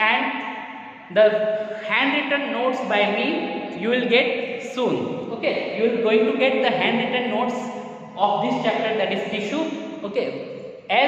the handwritten notes by me you will get soon, okay. You are going to get the handwritten notes of this chapter, that is tissue, okay.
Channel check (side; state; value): both; identical; correlation 1.00